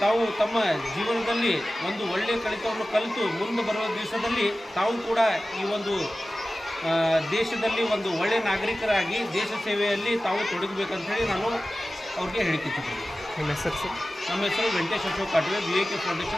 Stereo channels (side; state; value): both; normal; correlation 0.96